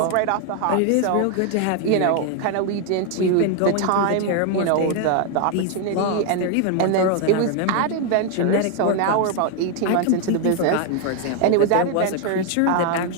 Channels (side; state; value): both; different; correlation 0.00